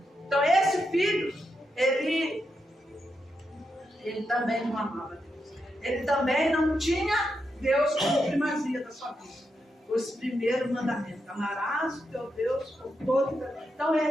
Então, esse filho, ele também não amava Deus. Ele também não tinha Deus como primazia da sua vida. Esse primeiro mandamento: amarás o teu Deus com todo o teu... Então,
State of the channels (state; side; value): normal; both; correlation 0.84